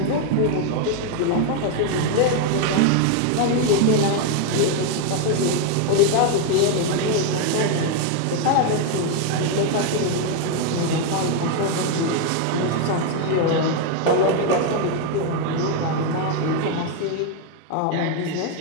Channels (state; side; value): different; both; correlation 0.01